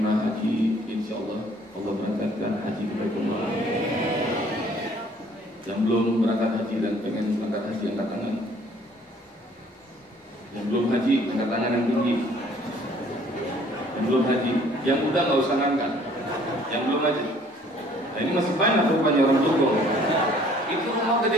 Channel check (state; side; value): normal; both; correlation 0.57